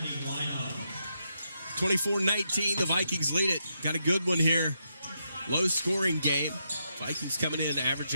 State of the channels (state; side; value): inverted; both; correlation -0.82